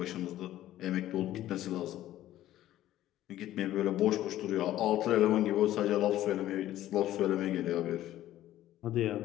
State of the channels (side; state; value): right; quieter; 13.7 dB